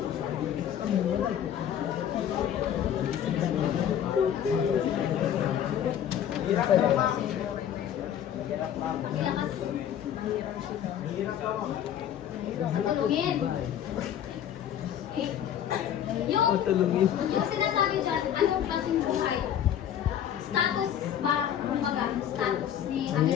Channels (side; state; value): right; quieter; 10.0 dB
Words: Ilakas. Tanungin. Okay. Yung Matulungin. Yung sinasabi dyan, anong klaseng buhay? Status ba, kumbaga, status ni